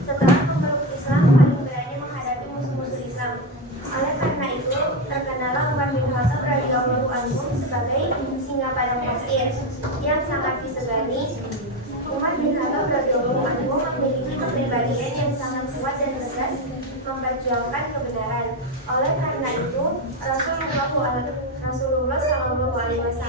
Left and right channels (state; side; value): normal; both; correlation 0.11